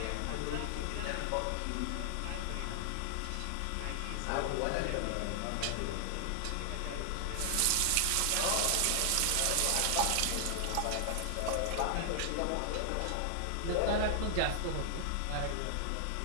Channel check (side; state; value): both; different; correlation 0.00